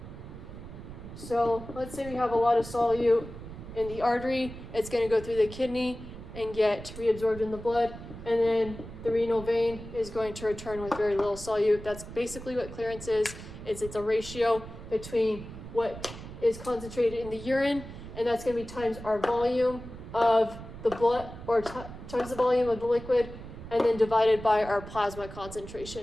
So let's say we have a lot of solute in the artery, it's going to go through the kidney and get reabsorbed in the blood, and then the renal vein is going to return with very little solute. That's basically what clearance is. It's a ratio between what is concentrated in the urine, and that's going to be times our volume of the blood, or times the volume of the liquid, and then divided by our plasma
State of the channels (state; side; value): noise; right; rumble, 13 dB below the sound